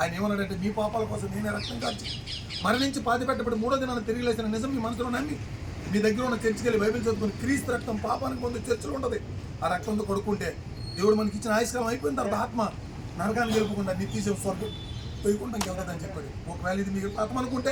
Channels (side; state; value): both; identical; correlation 1.00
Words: ఏమన్నాడంటే, మీ పాపాల కోసం నేనే రక్తం కాల్చి మరణించి పాతి పెట్టబడి 3వ దినాన్ని తిరిగి లేచిన నిజం మీ మనసులో నమ్మి మీ దగ్గర ఉన్న చర్చికి వెళ్ళి బైబిల్ చదువుకుని క్రీస్తు రక్తం పాపానికి ముందు చర్చలు ఉంటుంది. ఆ రక్తంతో కొడుకుంటే దేవుడు మనకి ఇచ్చిన ఆయుష్కాలం అయిపోయిన తర్వాత ఆత్మ నరకాన్ని గెలుపుకుండా నిత్యజీవం స్వర్గం పోయకుండా వెళ్తుందని చెప్పాడు. ఒకవేళ ఇది మీకు ఆత్మ అనుకుంటే